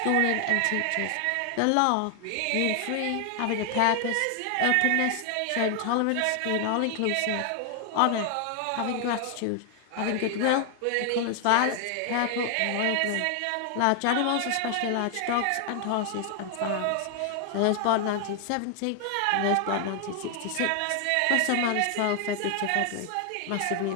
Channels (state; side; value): different; both; correlation 0.00